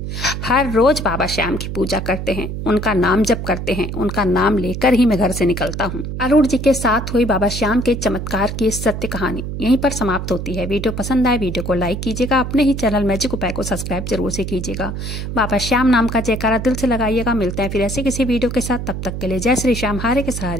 हर रोज बाबा श्याम की पूजा करते हैं, उनका नाम जप करते हैं, उनका नाम लेकर ही मैं घर से निकलता हूँ। अरुण जी के साथ हुई बाबा श्याम के चमत्कार की सत्य कहानी यहीं पर समाप्त होती है। वीडियो पसंद आए, वीडियो को लाइक कीजिएगा, अपने ही चैनल मैजिक उपाय को सब्सक्राइब जरूर से कीजिएगा। बाबा श्याम नाम का जयकारा दिल से लगाइएगा। मिलते हैं फिर ऐसे किसी वीडियो के साथ, तब तक के लिए जय श्री श्याम, हारे के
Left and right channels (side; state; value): right; noise; hum, 5 dB below the sound